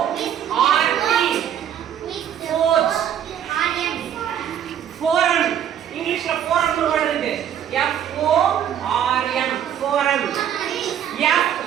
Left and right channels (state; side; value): quieter; left; 9.7 dB